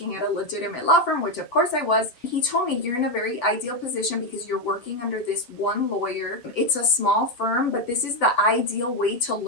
at a legitimate law firm, which of course I was. He told me, you're in a very ideal position because you're working under this one lawyer. It's a small firm, but this is the ideal way to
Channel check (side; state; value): right; late; 8.0 ms